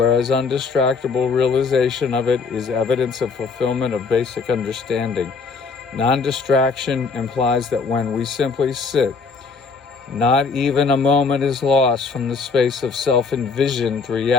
undistractable realization of it is evidence of fulfillment of basic understanding. Non-distraction implies that when we simply sit, not even a moment is lost from the space of self-envisioned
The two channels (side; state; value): right; quieter; 4.7 dB